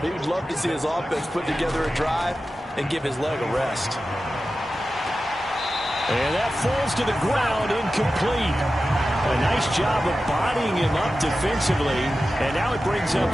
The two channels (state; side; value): normal; both; correlation 0.93